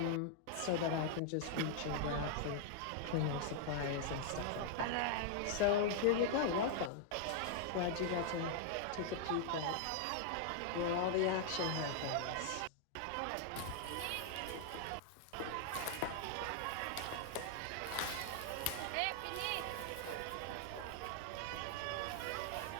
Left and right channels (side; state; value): both; different; correlation -0.01